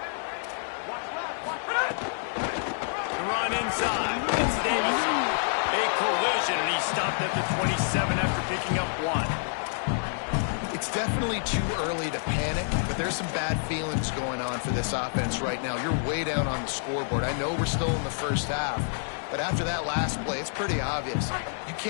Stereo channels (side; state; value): right; silent; 59 dB below the other